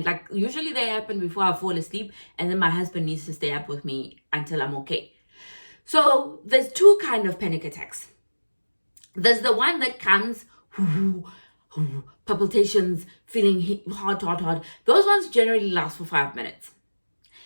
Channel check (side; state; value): both; inverted; correlation -1.00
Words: like usually they happen before I fall asleep, and then my husband needs to stay up with me until I'm okay. So there's two kind of panic attacks. There's the one that comes, palpitations, feeling hot. Those ones generally last for 5 minutes.